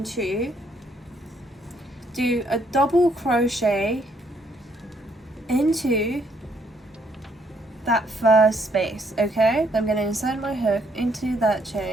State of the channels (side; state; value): both; normal; correlation 0.70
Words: 2, do a double crochet into that first space. Okay, I'm going to insert my hook into that